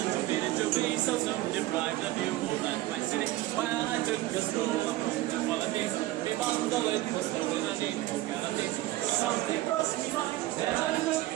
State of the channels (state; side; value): quieter; left; 16.8 dB